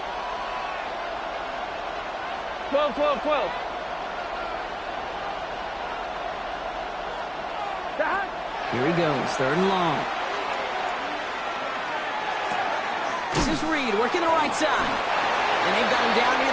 12, 12, 12. Here he goes, 3rd and long. This is Reed working the right side. And they've got him down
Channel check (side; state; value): both; identical; correlation 1.00